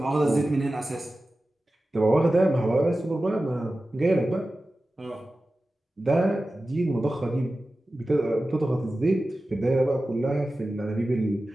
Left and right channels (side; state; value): both; normal; correlation 0.95